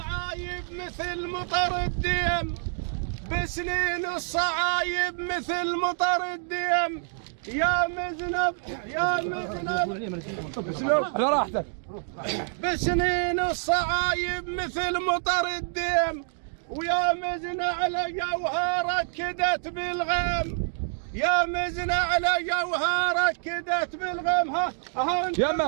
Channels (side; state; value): left; silent; 60 dB below the other